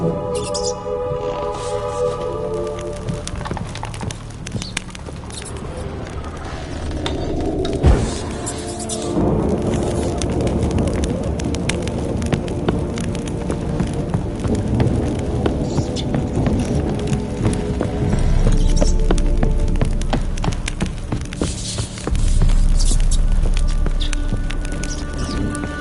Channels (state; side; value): identical; both; correlation 1.00